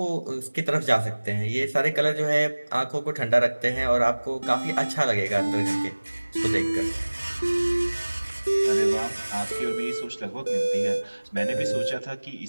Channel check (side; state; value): both; inverted; correlation -1.00